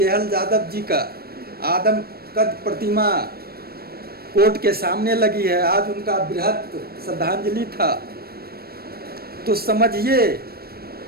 यादव जी का आदम कद प्रतिमा कोर्ट के सामने लगी है। आज उनका बृहत श्रद्धांजलि था। तो समझिए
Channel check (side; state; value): left; late; 0.45 ms